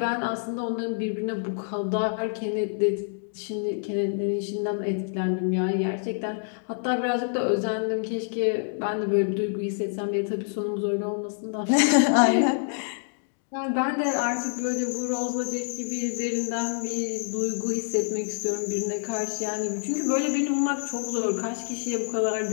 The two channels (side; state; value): right; silent; digital silence